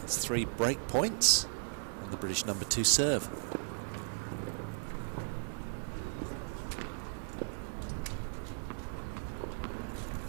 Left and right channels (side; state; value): left; silent; digital silence